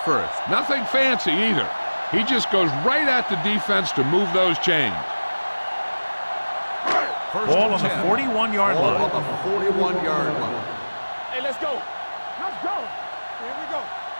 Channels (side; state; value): both; inverted; correlation -1.00